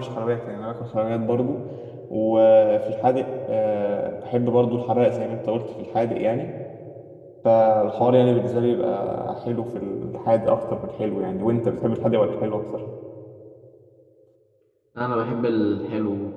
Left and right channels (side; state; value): both; identical; correlation 1.00